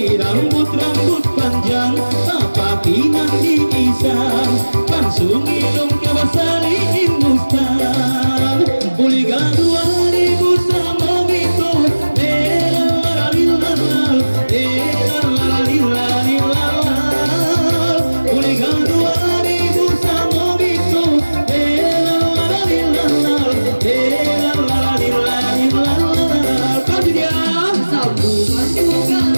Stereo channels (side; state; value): both; inverted; correlation -1.00